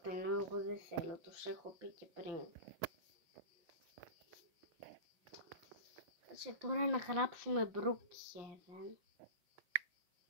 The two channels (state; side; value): late; left; 5.7 ms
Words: ενώ εγώ δεν θέλω. Τους έχω πει και πριν. Κάτσε τώρα να γράψουμε Brookhaven.